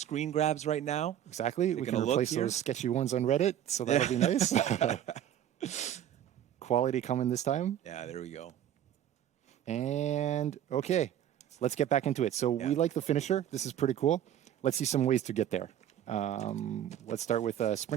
grabs right now. Exactly. We can Taking a look replace here. those sketchy ones on Reddit, so that'll be nice. Quality coming this time. Yeah, there we go. And okay, let's get back into it. So we like the finisher. This is pretty cool. Let's see some ways to get there. Let's start with a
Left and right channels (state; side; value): quieter; left; 10.8 dB